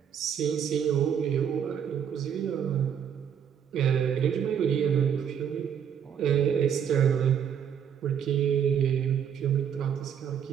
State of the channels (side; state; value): left; quieter; 8.3 dB